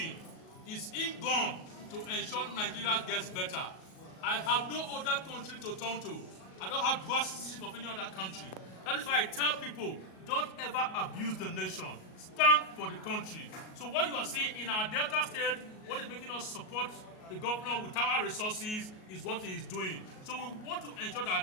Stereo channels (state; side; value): late; right; 38 ms